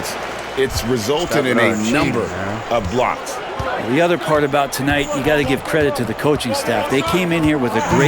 It's resulted in a number of blocks. The other part about tonight, you got to give credit to the coaching staff. They came in here with a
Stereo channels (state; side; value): identical; both; correlation 1.00